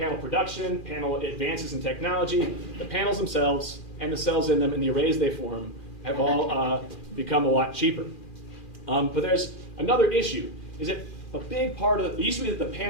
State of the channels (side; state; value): right; late; 2.4 ms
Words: production, panel advances in technology. The panels themselves and the cells in them and the arrays they form have all become a lot cheaper. But there's another issue, is that a big part of it used to be that the